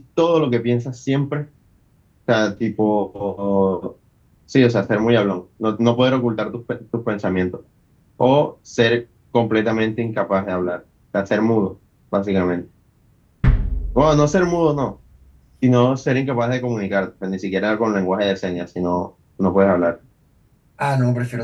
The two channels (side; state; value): both; identical; correlation 1.00